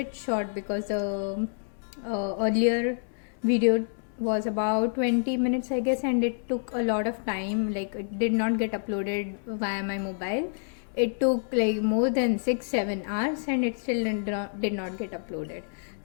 short because the earlier video was about 20 minutes I guess, and it took a lot of time. Like, it did not get uploaded via my mobile. It took like more than 6-7 hours and it still did not get uploaded.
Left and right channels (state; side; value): silent; right; 59 dB below the other